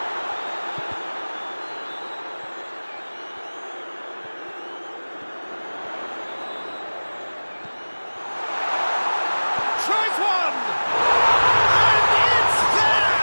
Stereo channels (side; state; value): both; inverted; correlation -1.00